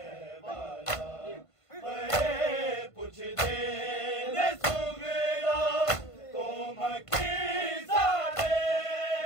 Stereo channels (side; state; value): right; late; 1.5 ms